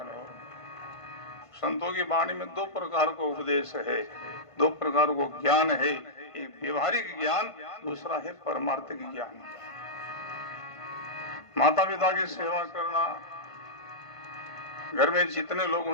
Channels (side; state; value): right; late; 1.5 ms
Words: संतों की वाणी में दो प्रकार का उपदेश है, दो प्रकार को ज्ञान है। एक व्यवहारिक ज्ञान, दूसरा है परमार्थिक ज्ञान। माता पिता की सेवा करना, घर में जितने लोग